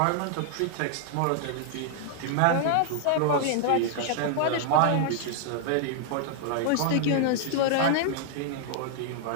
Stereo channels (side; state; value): both; different; correlation -0.01